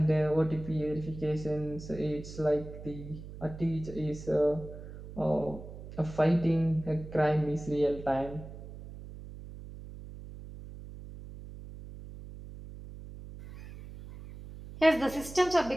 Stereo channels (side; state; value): right; noise; hum, 13 dB below the sound